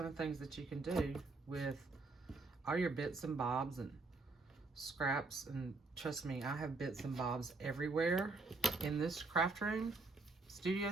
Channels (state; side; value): quieter; left; 3.6 dB